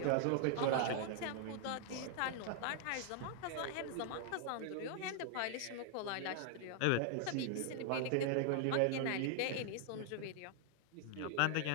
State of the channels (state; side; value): different; both; correlation 0.00